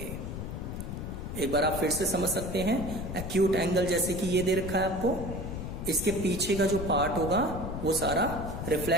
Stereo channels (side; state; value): left; noise; rumble, 6 dB below the sound